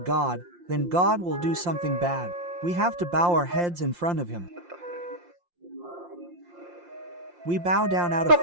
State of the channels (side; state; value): left; late; 5.7 ms